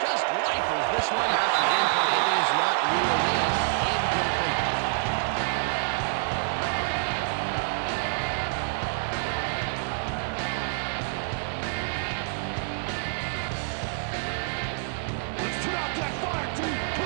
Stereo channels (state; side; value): silent; left; digital silence